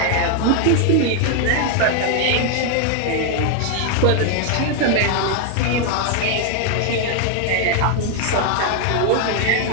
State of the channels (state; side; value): different; both; correlation 0.00